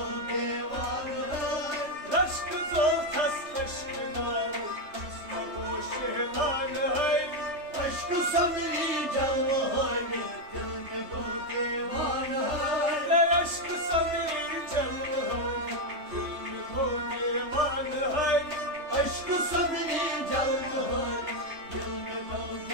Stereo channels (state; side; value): late; left; 3.3 ms